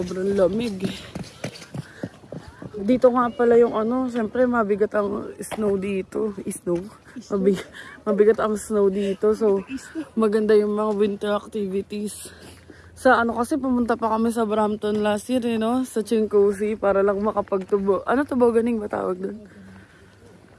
lamig. Dito nga pala yung siyempre mabigat ang snow dito. Mabigat ang snow dito. So, maganda yung mga winter activities. Sa kasi pumunta pa kami sa Brampton last year, no? Sa Chincosi para lang makapagtubo. Tuboganing ba tawag doon?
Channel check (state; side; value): identical; both; correlation 1.00